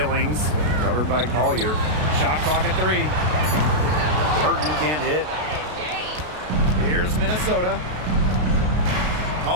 covered by Collier. Shot clock at 3. Burton can't hit. Here's Minnesota.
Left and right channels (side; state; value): left; late; 33 ms